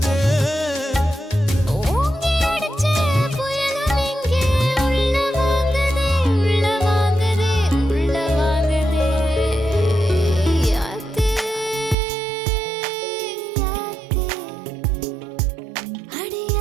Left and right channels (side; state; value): left; drops out; at 12.0 s